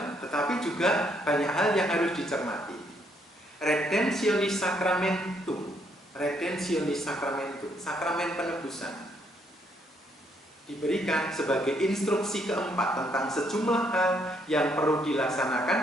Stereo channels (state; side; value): normal; both; correlation 0.72